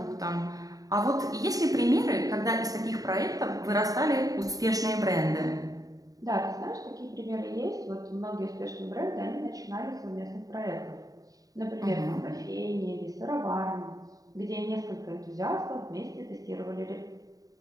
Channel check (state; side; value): late; left; 0.18 ms